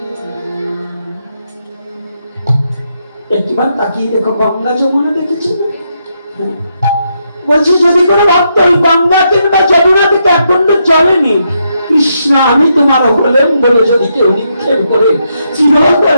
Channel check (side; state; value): both; inverted; correlation -0.80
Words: একটিবার তাকিয়ে দেখো, গঙ্গা যমুনা দেখেছি, বলছি যদি কোনো ভক্ত ওই গঙ্গা কিংবা যমুনা থেকে এক কুণ্ড জলে নেই, কৃষ্ণ আমি তোমার হলেন বলে যদি কেউ নিক্ষেপ করে,